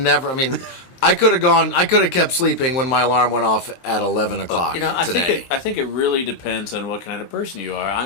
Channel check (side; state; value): right; late; 23 ms